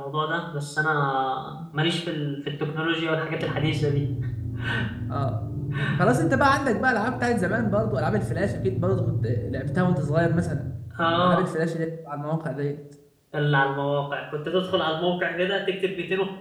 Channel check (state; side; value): identical; both; correlation 1.00